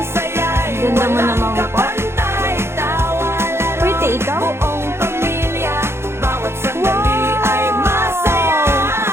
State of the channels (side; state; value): left; late; 0.12 ms